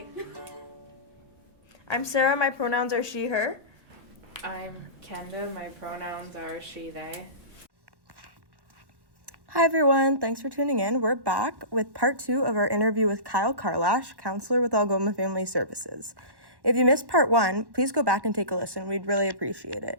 I'm Sarah, my pronouns are she, her. I'm Kenda, my pronouns are she, they. Hi everyone, thanks for tuning in. We're back with part 2 of our interview with Kyle Karalash, counselor with Algoma Family Services. If you missed part 1, please go back and take a listen. We'd really appreciate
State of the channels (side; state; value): left; late; 1.1 ms